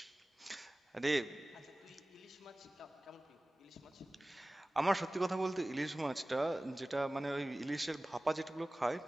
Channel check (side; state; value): both; normal; correlation 0.98